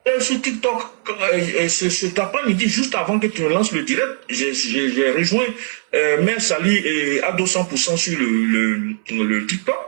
sur TikTok, cet après-midi, juste avant que tu lances le direct, j'ai rejoint Mère Sali et à 200% sur le TikTok.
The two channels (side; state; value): left; silent; 63 dB below the other